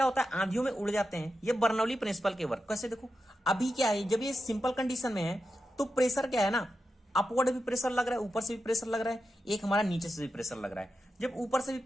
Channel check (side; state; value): both; normal; correlation 0.89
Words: होता है, आंधियों में उड़ जाते हैं। ये बर्नौली प्रिंसिपल के वर्क कैसे, देखो अभी क्या है, जब ये सिंपल कंडीशन में है तो प्रेशर क्या है ना, अपवर्ड भी प्रेशर लग रहा है, ऊपर से भी प्रेशर लग रहा है, एक हमारा नीचे से भी प्रेशर लग रहा है। जब ऊपर से भी